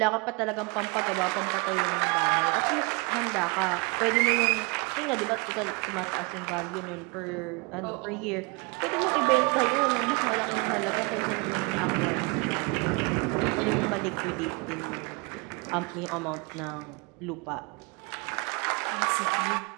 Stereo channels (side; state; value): left; quieter; 30.6 dB